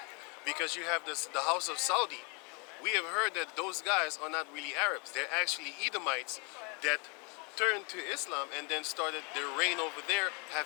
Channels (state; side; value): quieter; right; 33.2 dB